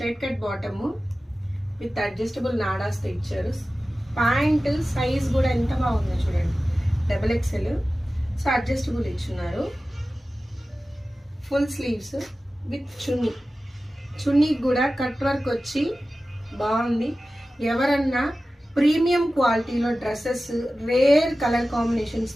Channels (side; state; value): both; normal; correlation 0.95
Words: cut bottom with adjustable నాడాస్తో ఇచ్చారు. ప్యాంట్ సైజ్ కూడా ఎంత బాగుందో చూడండి, XXL. సో అడ్జస్టబుల్ ఇచ్చున్నారు. ఫుల్ స్లీవ్స్ విత్ చున్నీకి కూడా కట్ వర్క్ వచ్చి బాగుంది. ఎవరన్నా ప్రీమియం క్వాలిటీలో డ్రెస్సెస్ రేర్ కలర్